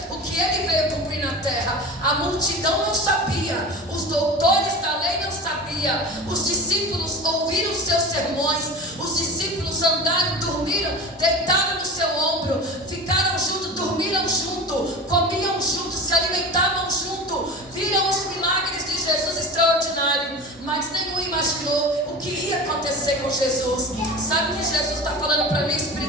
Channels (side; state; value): both; normal; correlation 0.31